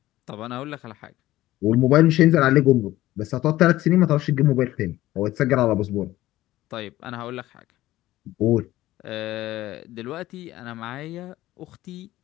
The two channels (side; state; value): right; quieter; 15.7 dB